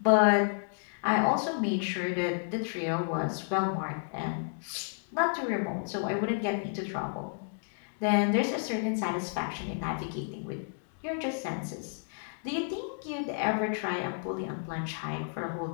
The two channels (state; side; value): silent; right; digital silence